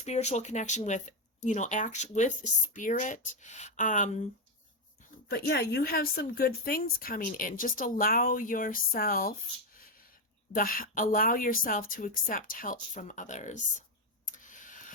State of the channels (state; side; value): normal; both; correlation 0.06